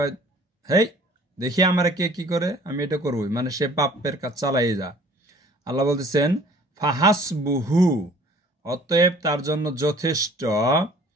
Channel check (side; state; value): both; normal; correlation 0.52